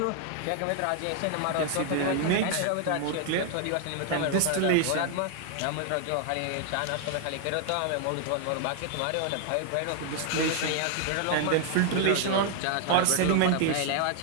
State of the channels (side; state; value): both; different; correlation 0.00